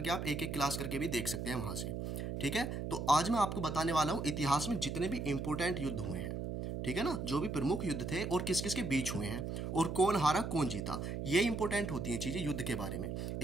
के आप एक एक क्लास करके भी देख सकते हैं वहाँ से। ठीक है, तो आज मैं आपको बताने वाला हूँ इतिहास में जितने भी इंपॉर्टेंट युद्ध हुए हैं, ठीक है ना, जो भी प्रमुख युद्ध थे और किस किस के बीच हुए हैं और कौन हारा कौन जीता। ये इंपॉर्टेंट होती हैं चीजें युद्ध के बारे में।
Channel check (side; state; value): right; noise; hum, 4 dB below the sound